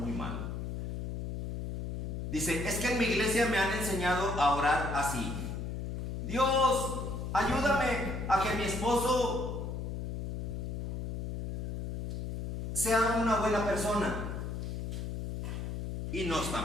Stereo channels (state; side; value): noise; left; hum, 4 dB below the sound